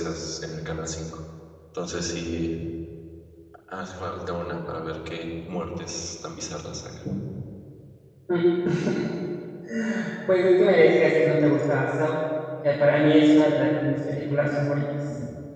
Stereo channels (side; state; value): both; identical; correlation 1.00